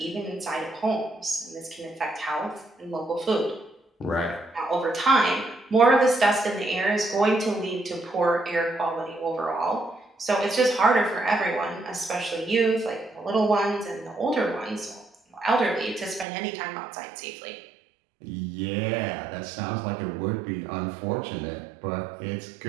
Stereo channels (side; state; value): left; drops out; at 16.2 s